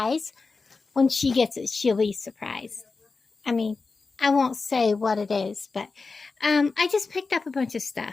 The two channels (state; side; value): quieter; right; 4.2 dB